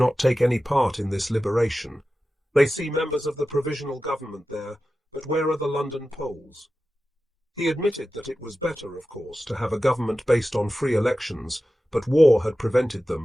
take any part in this liberation. They see members of the provisional government there, but where are the London Poles? He admitted that it was better, of course, to have a government based on free elections, but war had prevented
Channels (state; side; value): normal; both; correlation 0.94